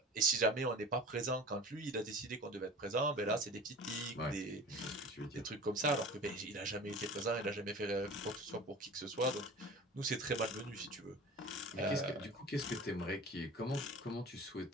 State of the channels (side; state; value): both; normal; correlation 0.39